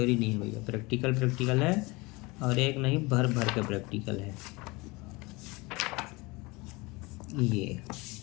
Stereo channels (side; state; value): right; quieter; 24.6 dB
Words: नहीं है भैया, प्रैक्टिकल है, और एक नहीं भर भर के प्रैक्टिकल है ये।